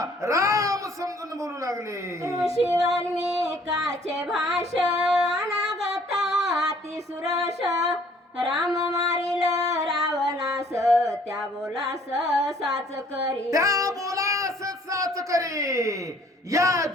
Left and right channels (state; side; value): normal; both; correlation 0.58